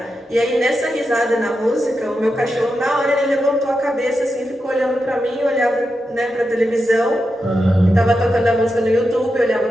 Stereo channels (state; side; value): normal; both; correlation 0.88